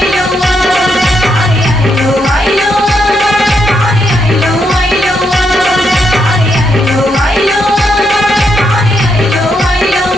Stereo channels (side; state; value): both; normal; correlation 0.79